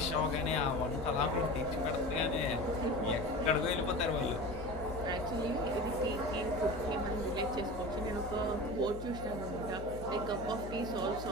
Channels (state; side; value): noise; left; hum, 10 dB below the sound